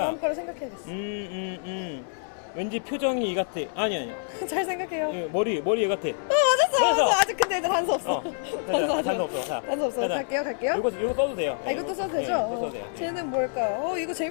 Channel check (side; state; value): right; silent; 60 dB below the other